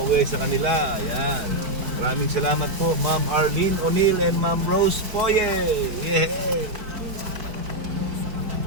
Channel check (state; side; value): late; left; 4.5 ms